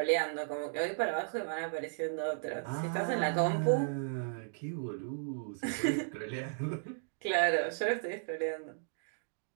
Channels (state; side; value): silent; left; digital silence